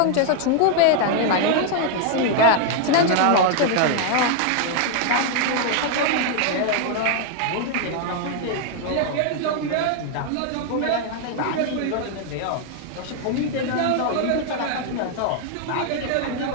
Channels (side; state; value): both; different; correlation 0.00